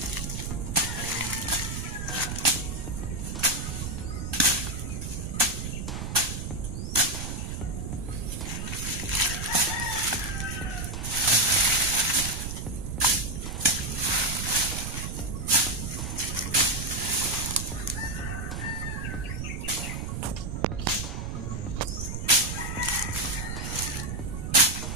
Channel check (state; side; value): noise; right; rumble, 4 dB below the sound